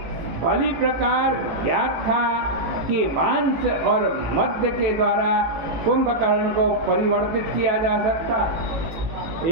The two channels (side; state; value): left; late; 18 ms